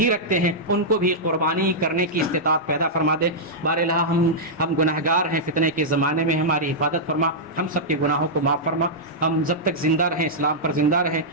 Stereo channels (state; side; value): normal; both; correlation -0.09